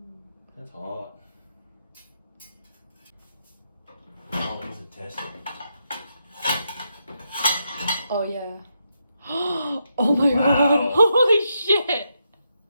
That's hot. Oh, these are tested. Oh yeah. Oh my Wow. God. Holy shit.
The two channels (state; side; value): inverted; both; correlation -0.81